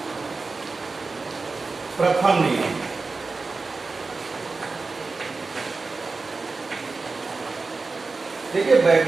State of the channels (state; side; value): quieter; left; 4.0 dB